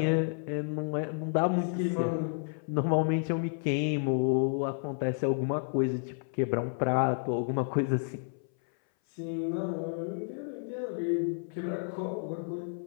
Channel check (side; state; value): right; silent; 57 dB below the other